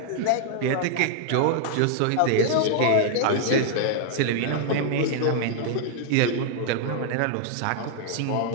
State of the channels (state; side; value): different; both; correlation 0.00